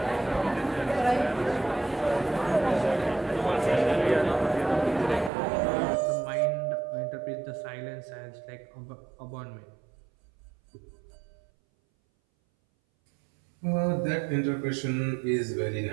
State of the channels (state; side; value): drops out; left; at 5.3 s